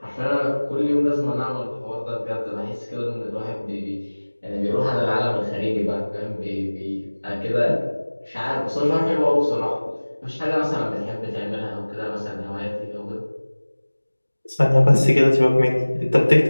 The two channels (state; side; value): inverted; both; correlation -1.00